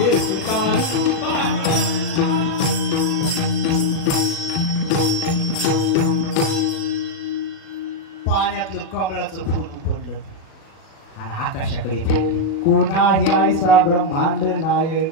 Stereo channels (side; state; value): right; late; 36 ms